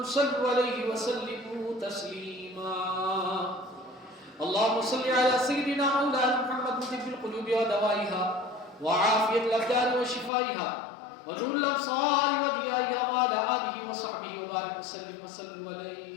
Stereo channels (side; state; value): right; drops out; at 10.3 s